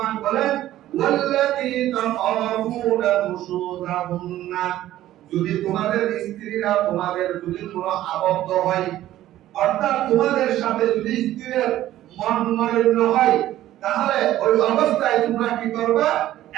বলেন ওয়াল্লাতী তাখাফুনা নুশুযাহুন্না, যদি তোমাদের স্ত্রীরা তোমাদের যদি কোনো আবদ্ধ হয়, অর্থাৎ তোমাদের সাথে যদি স্ত্রীর মন মলিন হয়, তাহলে ওই অবস্থায় তোমরা কি করবা?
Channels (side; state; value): left; quieter; 13.8 dB